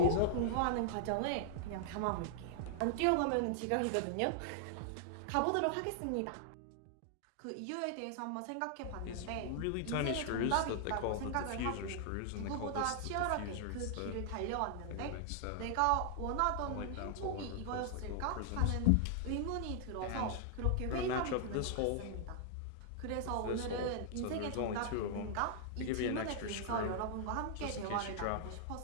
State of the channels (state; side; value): different; both; correlation -0.01